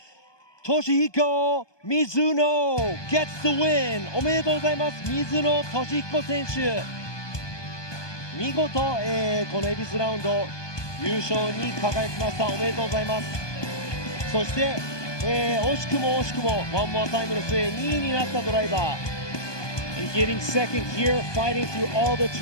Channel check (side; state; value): right; late; 1.2 ms